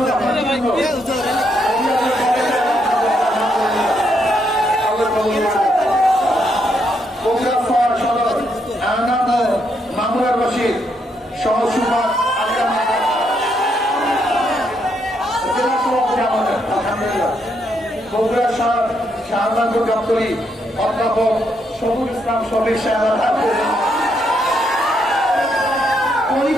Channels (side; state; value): both; normal; correlation 0.76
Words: মামুনুর রশিদ সহ সুপার আলহামদুলিল্লাহ। বগুড়া শাহজাহানপুর গাবতলী অধ্যাপক শফিকুল ইসলাম শফিক সাহেব